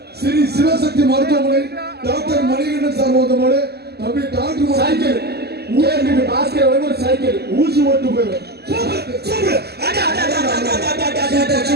ஸ்ரீ சிவசக்தி மருத்துவமனை டாக்டர் மணிகண்டன் சார்பாக வந்த மாடு தம்பி டாக்டர் சைக்கிள் ஊருக்கு பாஸ்கர் ஒரு சைக்கிள் ஊசி ஓட்டு போயிடும்.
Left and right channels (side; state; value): left; late; 0.47 ms